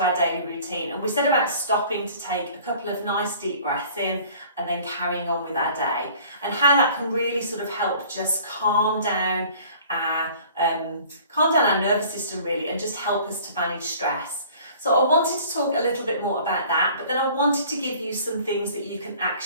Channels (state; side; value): inverted; both; correlation -0.50